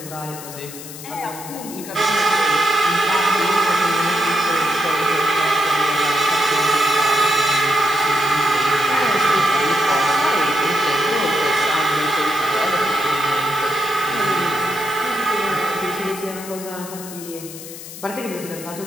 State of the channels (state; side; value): noise; left; hiss, 13 dB below the sound